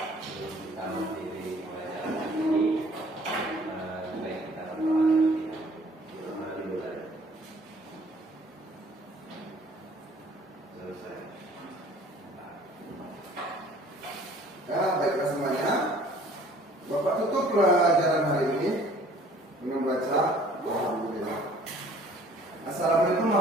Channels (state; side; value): normal; both; correlation 0.54